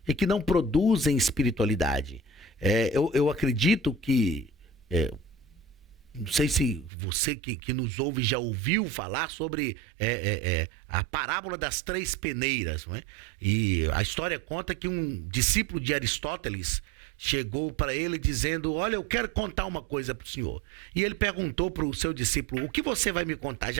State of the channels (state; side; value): drops out; left; at 6.9 s